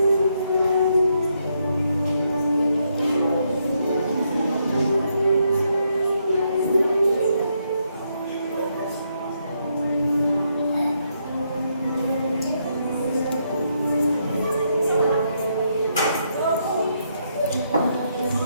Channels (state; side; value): inverted; both; correlation -0.77